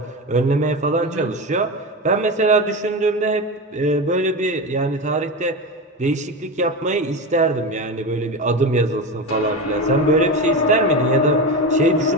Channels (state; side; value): normal; both; correlation 0.21